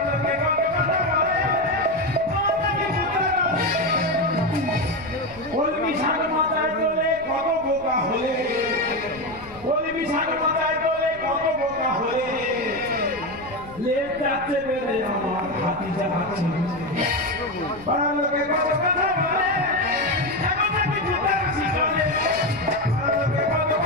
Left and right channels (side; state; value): left; noise; rumble, 20 dB below the sound